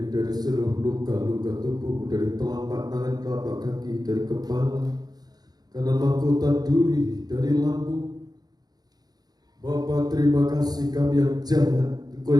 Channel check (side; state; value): left; late; 0.19 ms